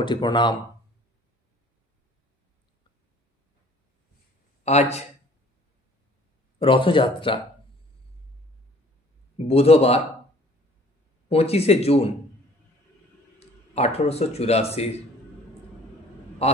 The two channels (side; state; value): both; normal; correlation 0.54